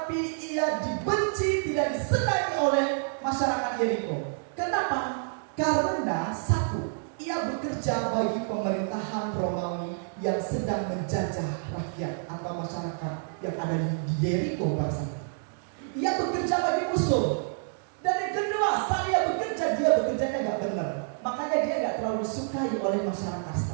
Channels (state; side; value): silent; left; digital silence